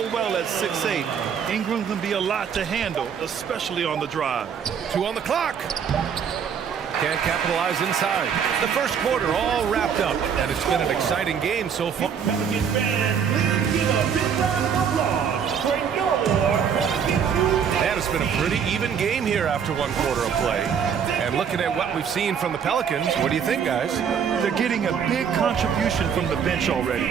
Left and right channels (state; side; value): quieter; left; 7.4 dB